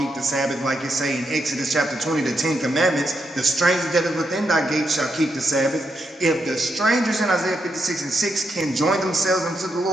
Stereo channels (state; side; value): normal; both; correlation 0.82